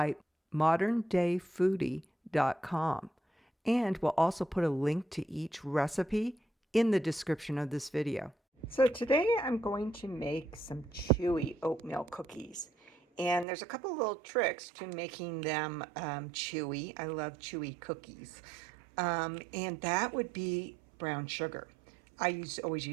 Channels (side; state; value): left; drops out; at 13.5 s